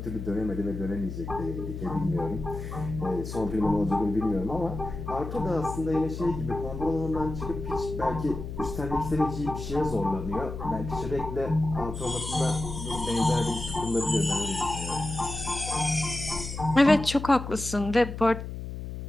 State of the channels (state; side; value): noise; left; hum, 7 dB below the sound